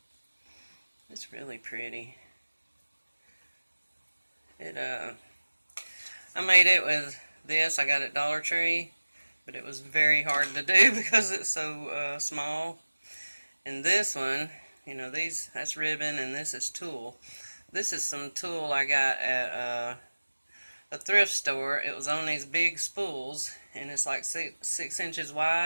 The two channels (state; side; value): inverted; both; correlation -1.00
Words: it's really pretty. I made it with this. I got it at Dollar Tree, but it was very hard to do because it's so small. And this one, that's ribbon, and this is tulle. This is some tulle I got at a thrift store. It was on these big spools, and it's like 6 inches